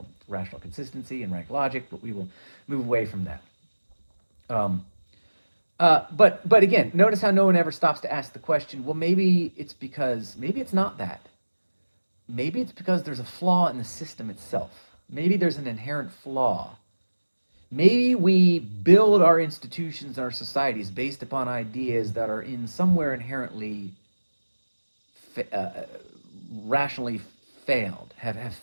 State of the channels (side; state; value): both; inverted; correlation -1.00